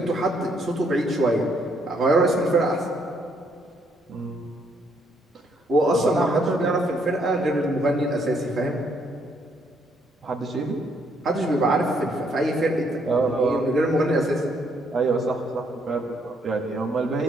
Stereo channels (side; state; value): both; normal; correlation 0.71